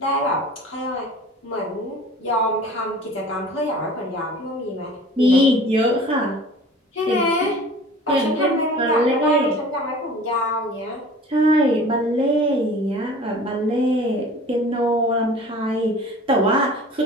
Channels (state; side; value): normal; both; correlation 0.44